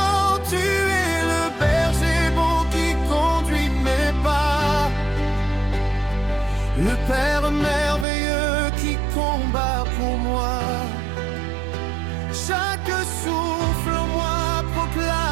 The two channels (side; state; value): left; drops out; at 8.1 s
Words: Tu es le berger bon qui conduit mes pas, le Père merveilleux qui combat pour moi. Chaque souffle en moi